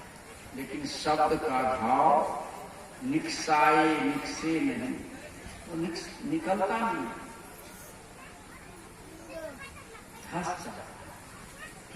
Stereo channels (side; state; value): both; identical; correlation 1.00